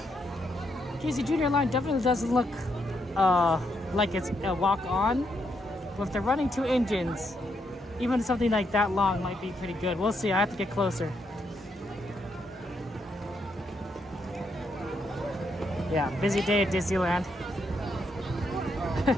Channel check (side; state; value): both; normal; correlation 0.78